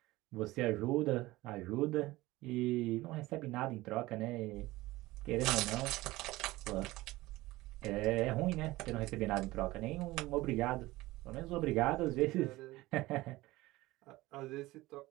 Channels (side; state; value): left; quieter; 19.0 dB